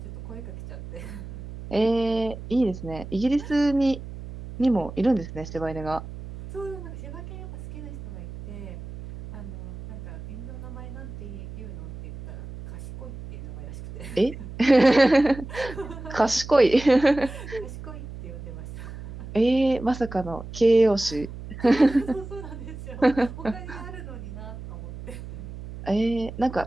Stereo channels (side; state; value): right; noise; hum, 12 dB below the sound